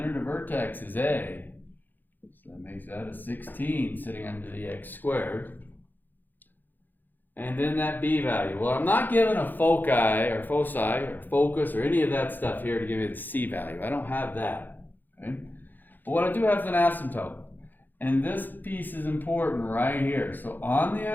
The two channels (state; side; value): late; right; 0.088 ms